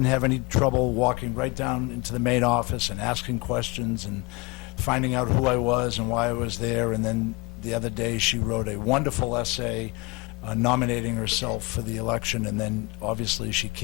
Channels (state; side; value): quieter; right; 26.2 dB